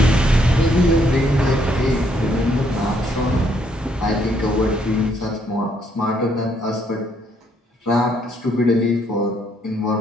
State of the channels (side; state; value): both; normal; correlation 0.70